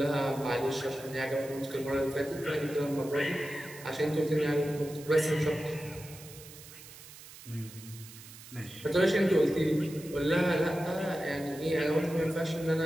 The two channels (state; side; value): noise; right; hiss, 17 dB below the sound